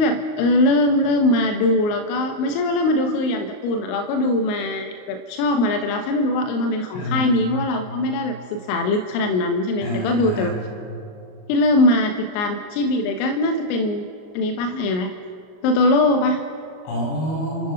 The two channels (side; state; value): right; late; 38 ms